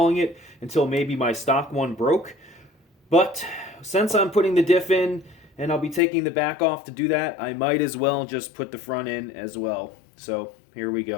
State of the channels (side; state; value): right; drops out; at 6.0 s